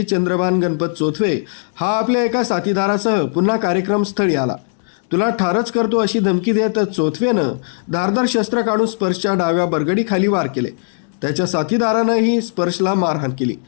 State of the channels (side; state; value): right; silent; digital silence